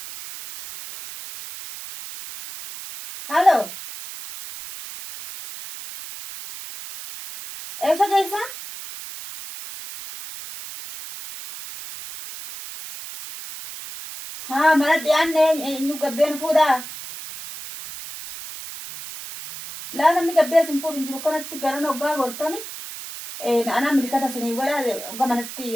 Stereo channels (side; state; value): right; noise; hiss, 11 dB below the sound